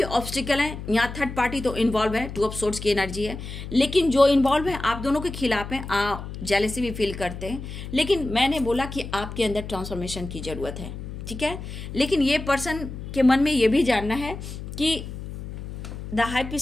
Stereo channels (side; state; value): left; noise; hum, 9 dB below the sound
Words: ऑब्स्टिकल है, यहाँ थर्ड पार्टी तो इन्वॉल्व है, 2 ऑफ सोर्ड्स की एनर्जी है, लेकिन जो इन्वॉल्व है आप दोनों के खिलाफ हैं, आप जेलसी भी फील करते हैं। लेकिन मैंने बोला कि आपके अंदर ट्रांसफॉर्मेशन की जरूरत है, ठीक है। लेकिन ये पर्सन के मन में ये भी जानना है कि द हाई